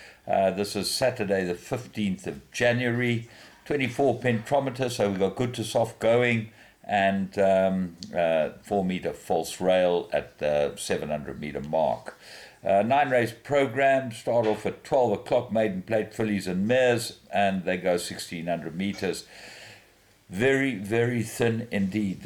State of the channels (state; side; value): identical; both; correlation 1.00